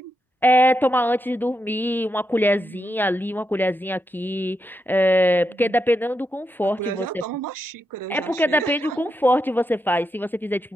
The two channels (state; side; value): normal; both; correlation 0.85